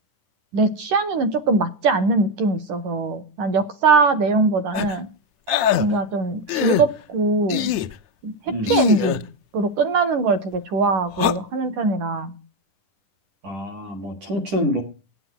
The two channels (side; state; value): left; late; 10 ms